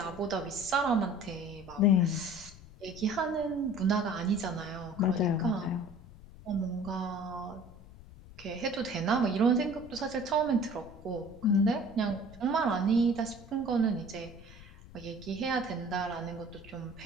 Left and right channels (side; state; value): left; noise; rumble, 18 dB below the sound